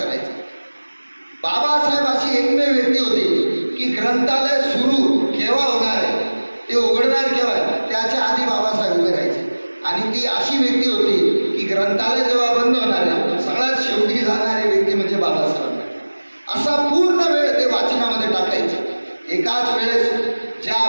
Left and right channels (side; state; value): both; inverted; correlation -1.00